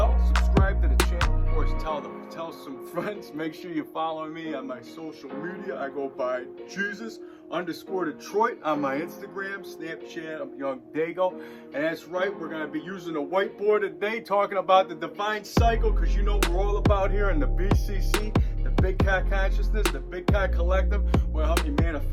subscribe to the channel, of course, tell some friends. Make sure you follow me on my social media. I go by Jesus_Detroit on my Instagram, Snapchat. I'm YOUNGDAYGO. And that's right, we're going to be using a whiteboard today, talking about the divine cycle, because you know we're all about here in the BCC, the Big Cat Consciousness, the Big Cat Collective. Will help you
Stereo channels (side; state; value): both; identical; correlation 1.00